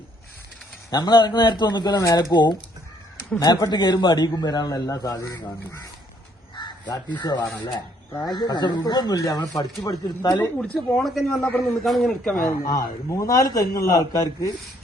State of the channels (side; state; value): both; normal; correlation 0.66